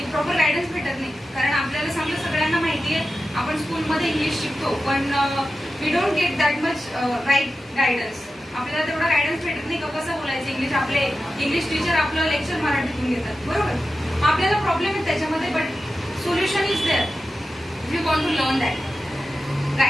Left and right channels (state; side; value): normal; both; correlation 0.92